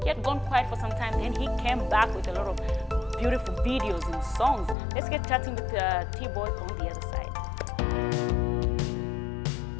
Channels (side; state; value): right; drops out; at 4.8 s